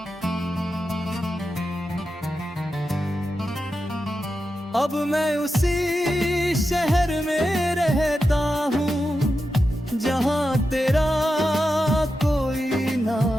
अब मैं उसी शहर में रहता हूँ जहाँ तेरा कोई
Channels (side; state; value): both; normal; correlation 0.90